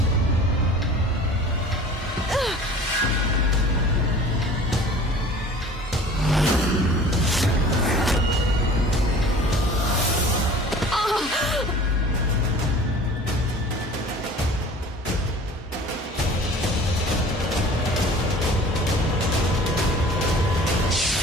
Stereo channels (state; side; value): normal; both; correlation 0.45